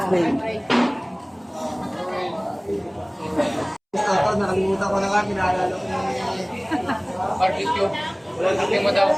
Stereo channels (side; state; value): both; identical; correlation 1.00